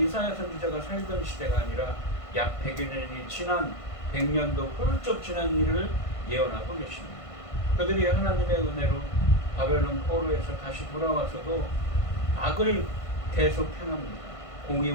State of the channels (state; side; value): late; right; 1.5 ms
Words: 선지자가 살던 시대가 아니라 약 100여 년이 지난 100년도 훌쩍 지난 일을 예언하고 계십니다. 그들이 하나님의 은혜로 바벨론 포로에서 다시 돌아와서도 악을 계속 행합니다.